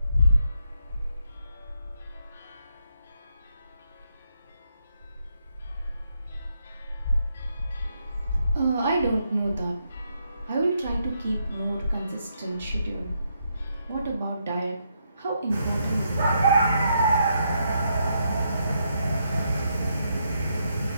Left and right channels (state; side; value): inverted; both; correlation -0.78